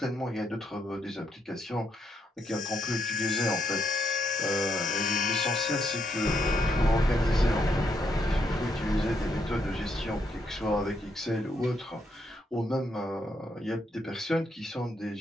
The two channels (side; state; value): both; normal; correlation 0.77